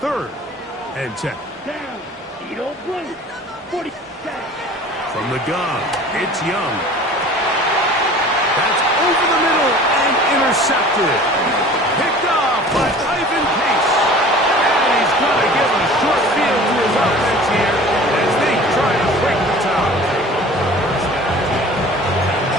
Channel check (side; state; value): both; normal; correlation 0.44